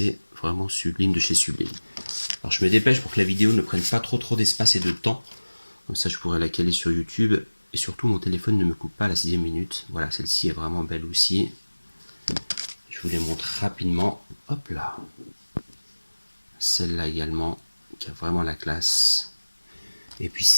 vraiment sublime de chez Sublime. Alors je me dépêche pour que la vidéo ne prenne pas trop d'espace et de temps. Comme ça, je pourrais la caler sur YouTube. Et surtout, mon téléphone ne me coupe pas à la 6e minute. Voilà, celle-ci est vraiment belle aussi. Je vous les montre rapidement. Hop là. Celle-là également, qui a vraiment la classe. Et puis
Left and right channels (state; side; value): inverted; both; correlation -1.00